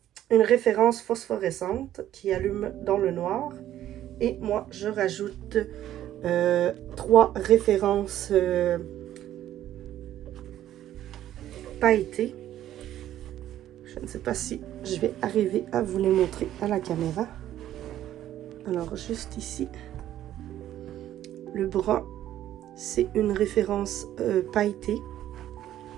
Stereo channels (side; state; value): left; quieter; 12.3 dB